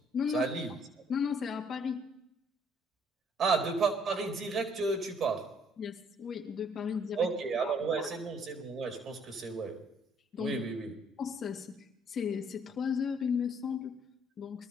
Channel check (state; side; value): normal; both; correlation 0.63